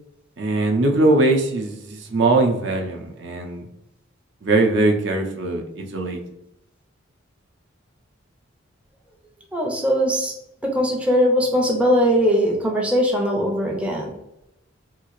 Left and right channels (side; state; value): both; normal; correlation 0.44